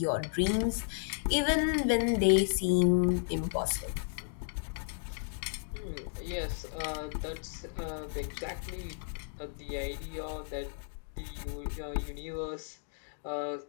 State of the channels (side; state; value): right; silent; digital silence